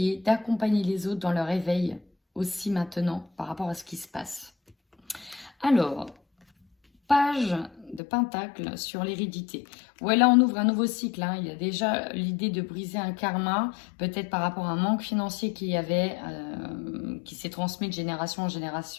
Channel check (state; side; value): drops out; right; at 8.0 s